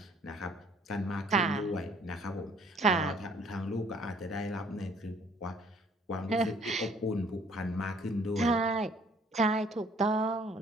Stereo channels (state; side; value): normal; both; correlation 0.59